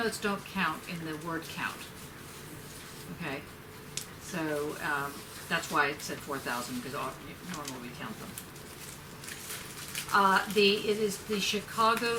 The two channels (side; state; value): both; identical; correlation 1.00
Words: don't count in the word count. Okay? So that's why it said 4,000, because normally we count them. It is the Chicago